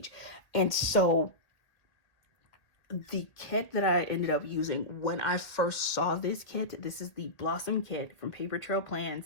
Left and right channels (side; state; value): right; late; 1.8 ms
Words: And so the kit that I ended up using when I first saw this kit, this is the Blossom kit from Paper Trail